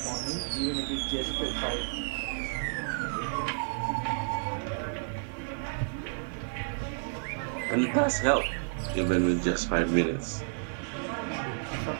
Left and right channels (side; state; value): left; silent; digital silence